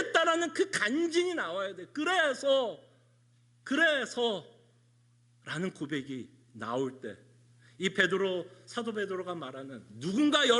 그 간증이 나와야 돼. 그래서 라는 고백이 나올 때, 이 사도 베드로가 말하는 누군가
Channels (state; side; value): identical; both; correlation 1.00